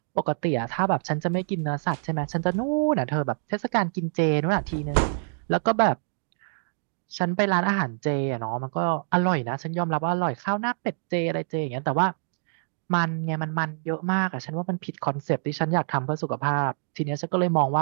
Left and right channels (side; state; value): left; silent; digital silence